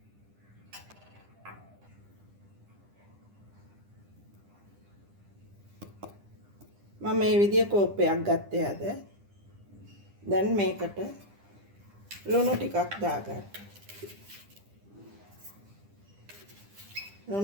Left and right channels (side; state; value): left; late; 10 ms